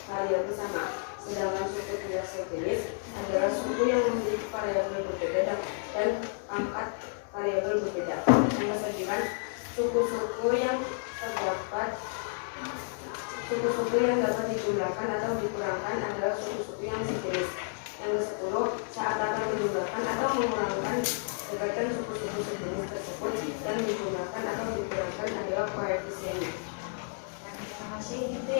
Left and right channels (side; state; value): right; silent; 57 dB below the other